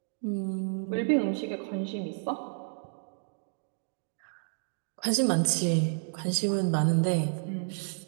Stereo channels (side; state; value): left; silent; digital silence